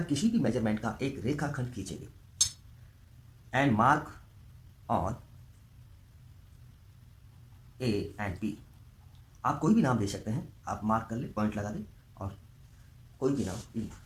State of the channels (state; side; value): identical; both; correlation 1.00